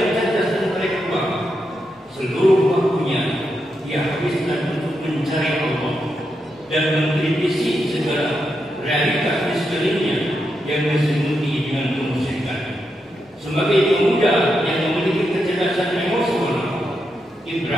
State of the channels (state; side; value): normal; both; correlation 0.84